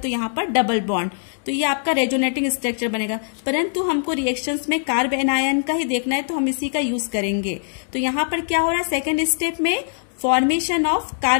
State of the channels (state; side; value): silent; right; digital silence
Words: यहाँ पर डबल बॉन्ड, तो ये आपका रेजोनेटिंग स्ट्रक्चर बनेगा। परंतु हमको रिएक्शंस में कार्ब एनायन का ही देखना है तो हम इसी का यूज करेंगे। तो यहाँ पर क्या हो रहा है, सेकेंड स्टेप में फॉर्मेशन ऑफ